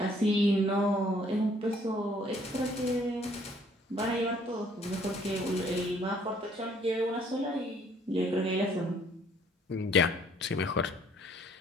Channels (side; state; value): both; normal; correlation 0.61